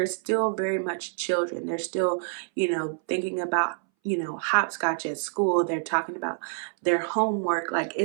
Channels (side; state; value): left; silent; 60 dB below the other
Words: still very much children. They're still, thinking about hopscotch at school. They're talking about their homework. Like